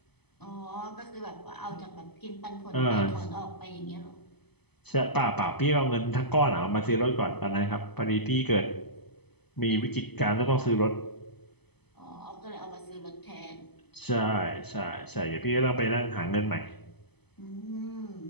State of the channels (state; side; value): late; right; 0.98 ms